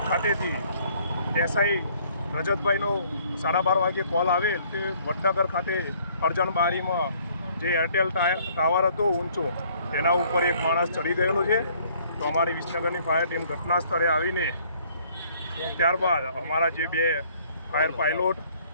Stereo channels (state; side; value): inverted; both; correlation -0.61